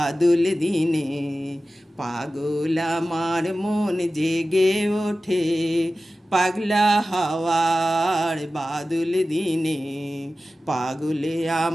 দিনে পাগল আমার মন জেগে ওঠে। পাগলা হাওয়ার বাদল দিনে পাগলে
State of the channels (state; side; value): normal; both; correlation 0.95